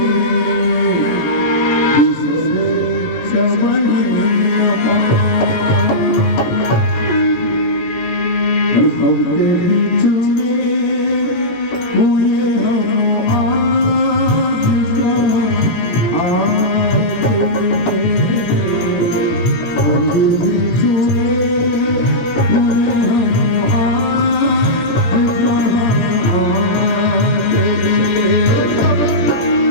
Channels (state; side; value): late; right; 18 ms